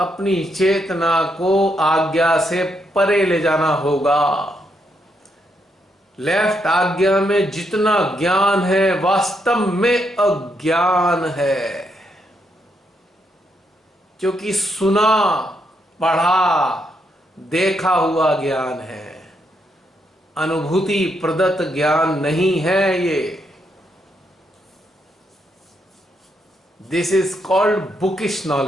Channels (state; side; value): normal; both; correlation 0.78